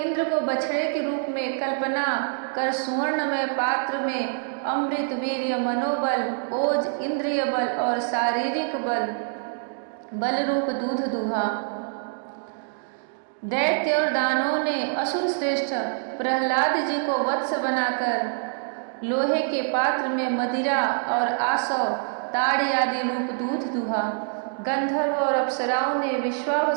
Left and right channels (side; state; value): left; silent; digital silence